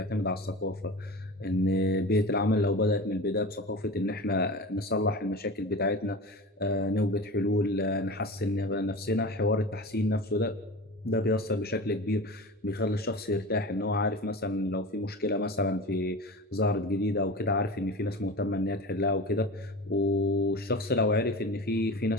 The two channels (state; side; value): normal; both; correlation 0.31